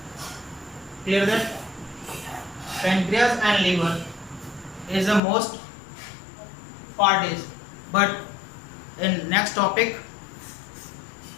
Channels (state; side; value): drops out; right; at 5.2 s